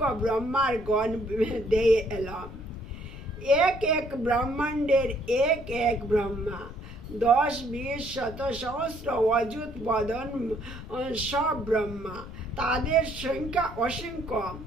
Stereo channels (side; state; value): left; noise; rumble, 13 dB below the sound